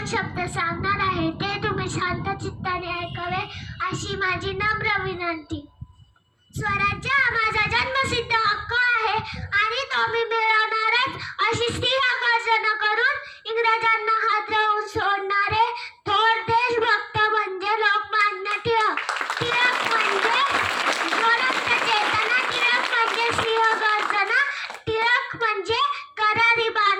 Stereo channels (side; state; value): both; identical; correlation 1.00